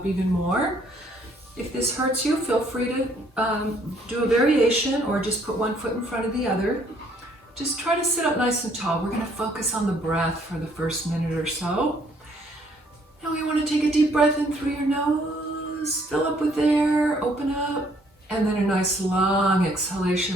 even more. If this hurts you, feel free to do a variation or just put one foot in front of the other. Just try to sit up nice and tall. We're going to focus on the breath for the first minute or so. Now we want to take a deep breath in through your nose, fill up with air, open up, and then a nice long exhalation,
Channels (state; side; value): normal; both; correlation 0.65